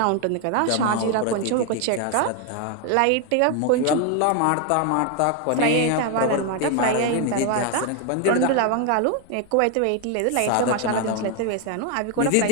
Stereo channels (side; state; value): both; different; correlation 0.01